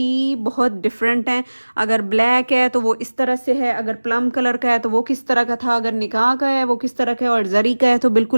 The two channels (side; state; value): both; inverted; correlation -1.00